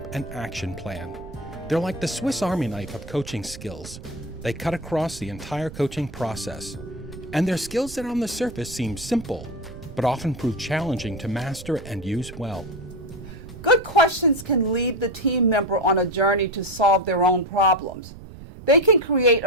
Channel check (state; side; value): noise; right; rumble, 15 dB below the sound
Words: an action plan. They're like the Swiss Army knife of coaching skills. They cut across the entire coaching process. And they're skills that on the surface seem simple, but often prove challenging to master and use well. Good questions can lead the team member on a journey to solve their own problems. They can create